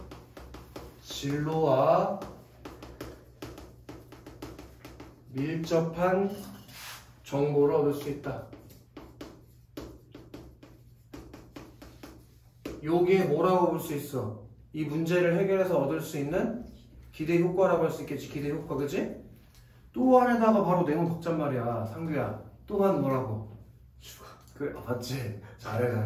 진로와 밀접한 정보를 얻을 수 있다. 요게 뭐라고 볼 수 있어? 이 문제를 해결해서 얻을 수 있는 기대 효과라고 할 수 있겠지. 기대 효과, 그치? 또 안에다가 바로 내놓은 덕잔 말이야. 상규야. 또한 뭐라고? 죽어. 그래 맞지?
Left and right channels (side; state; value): both; identical; correlation 1.00